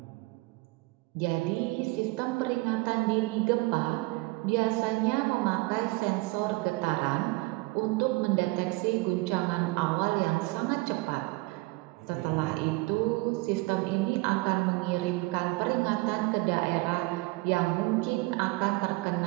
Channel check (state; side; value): quieter; left; 23.5 dB